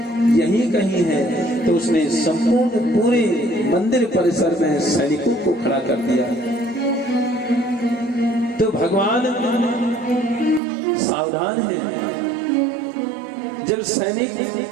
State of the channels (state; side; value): drops out; left; at 10.6 s